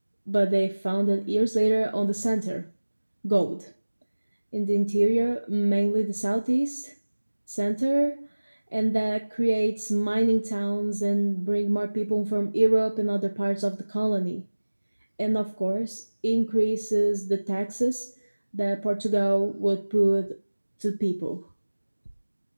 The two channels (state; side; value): inverted; both; correlation -1.00